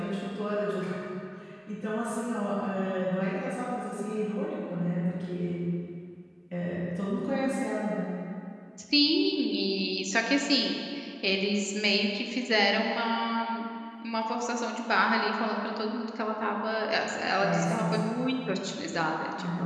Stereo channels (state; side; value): identical; both; correlation 1.00